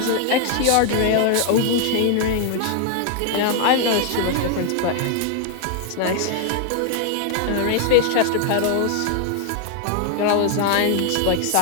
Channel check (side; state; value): both; different; correlation 0.00